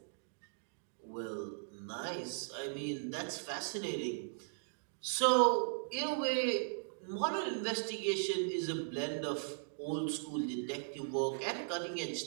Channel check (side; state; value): left; silent; digital silence